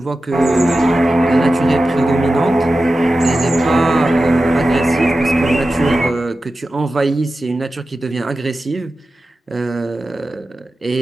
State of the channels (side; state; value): both; normal; correlation 0.93